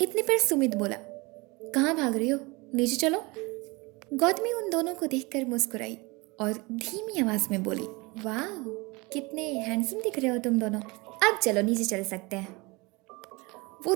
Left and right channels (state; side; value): quieter; left; 25.3 dB